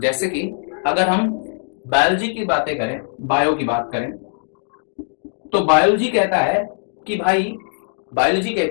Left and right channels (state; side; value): silent; right; digital silence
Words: कि अगर हम बायोलॉजी की बातें करें, बायो की बात करें, तो बायोलॉजी कहता है कि भाई, बायोलॉजी